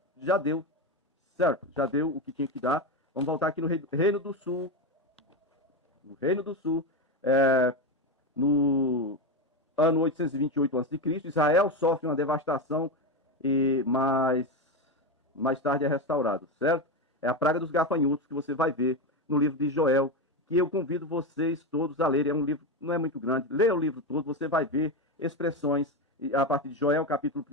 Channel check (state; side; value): normal; both; correlation 0.14